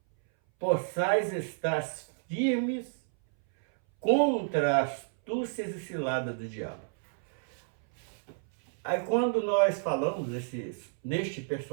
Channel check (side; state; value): left; silent; 58 dB below the other